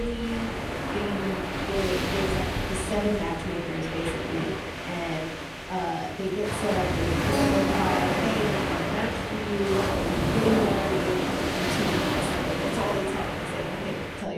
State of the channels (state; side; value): identical; both; correlation 1.00